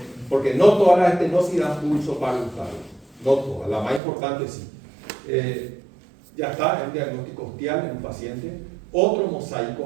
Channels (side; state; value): left; drops out; at 4.0 s